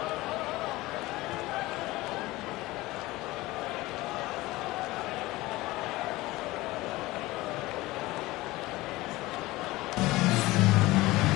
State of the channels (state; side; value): quieter; right; 19.4 dB